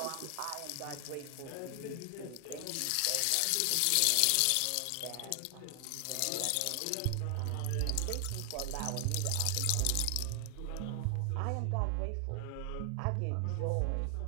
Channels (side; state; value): both; different; correlation 0.00